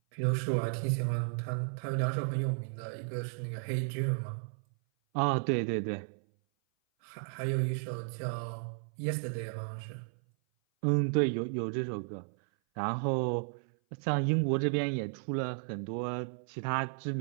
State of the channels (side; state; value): left; silent; 55 dB below the other